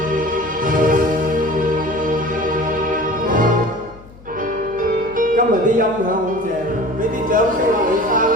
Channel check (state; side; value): noise; left; hum, 21 dB below the sound